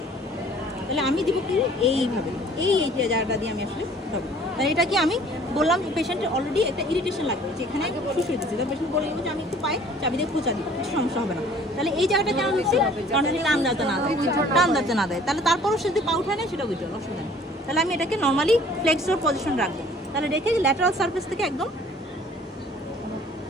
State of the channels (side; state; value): both; normal; correlation 0.53